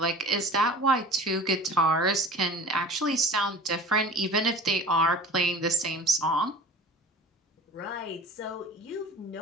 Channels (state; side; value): normal; both; correlation 0.41